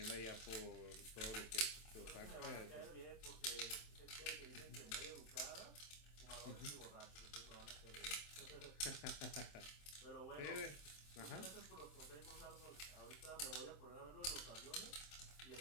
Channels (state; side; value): late; right; 27 ms